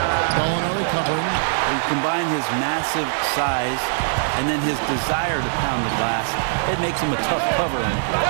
Gallinari covering. You combine his massive size and then his desire to pound the glass, it makes him a tough cover on the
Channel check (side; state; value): left; silent; digital silence